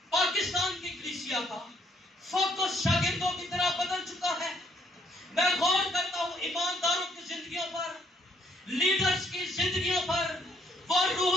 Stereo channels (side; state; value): both; normal; correlation 0.68